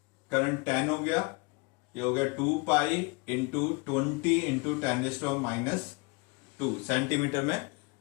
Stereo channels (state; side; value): quieter; right; 27.8 dB